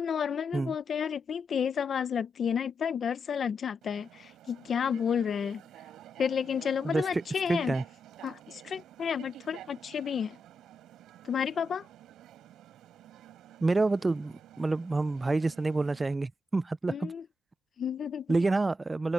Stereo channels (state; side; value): normal; both; correlation 0.85